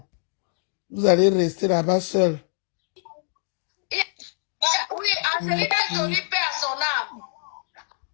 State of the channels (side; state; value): right; silent; digital silence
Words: Vous allez rester là-bas seul. Oui, Angelina Jolie paie à son âme.